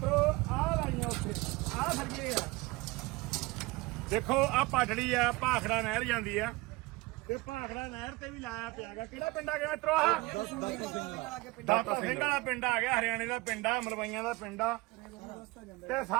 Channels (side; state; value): left; quieter; 22.7 dB